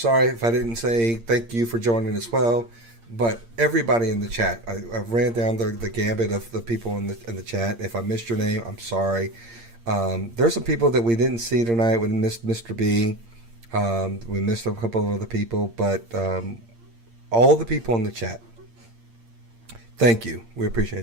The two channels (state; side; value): late; left; 8.7 ms